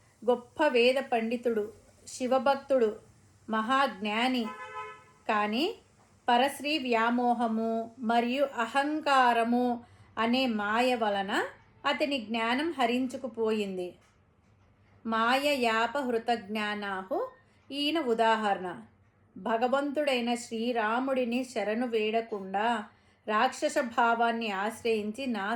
గొప్ప వేద పండితుడు, శివభక్తుడు, మహాజ్ఞాని. కానీ పరశ్రీ వ్యామోహము మరియు అహంకారము అనే మాయ వలన అతని జ్ఞానం హరించుకుపోయింది. మాయయాపహృత జ్ఞానాహు ఈయన ఉదాహరణ. భగవంతుడైన శ్రీరాముడిని శరణు వేడకుండా రాక్షస భావాన్ని ఆశ్రయించి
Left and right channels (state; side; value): identical; both; correlation 1.00